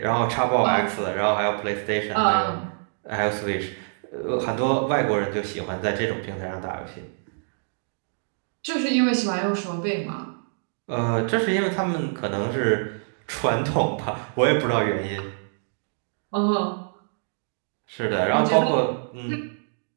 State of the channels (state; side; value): silent; left; digital silence